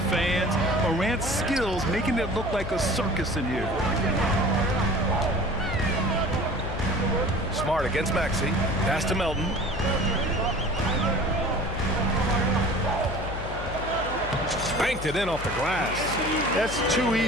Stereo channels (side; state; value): left; noise; hum, 8 dB below the sound